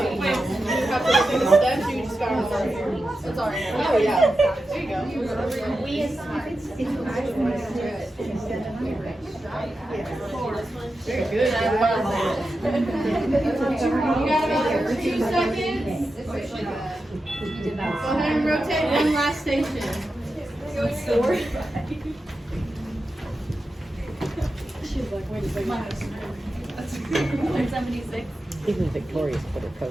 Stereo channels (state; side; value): normal; both; correlation 0.91